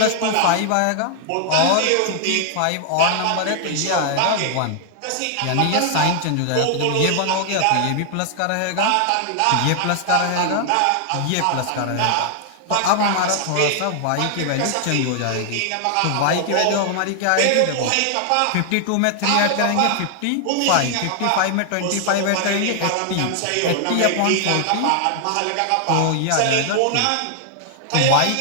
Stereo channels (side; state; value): both; different; correlation 0.00